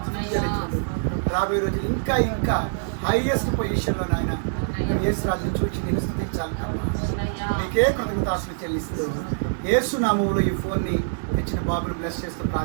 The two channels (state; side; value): silent; left; digital silence